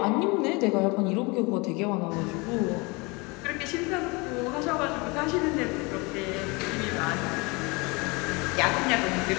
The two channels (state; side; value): quieter; right; 27.1 dB